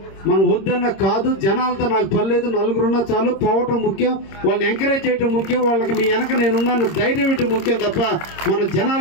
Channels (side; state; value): right; late; 26 ms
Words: మనం వద్దన్న కాదు, జనాలతో నాకు పర్లేదు, నలుగురున్నా చాలు, పోవటం ముఖ్యం, వాళ్ళని ఎంకరేజ్ చేయటం ముఖ్యం, వాళ్ళకి మీ వెనక నేనున్నాను ధైర్యం ఇవ్వటం ముఖ్యం తప్ప మనం